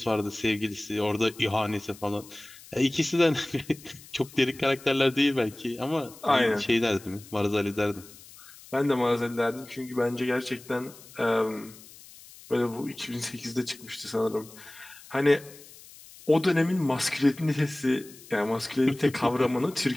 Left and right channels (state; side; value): noise; left; hiss, 20 dB below the sound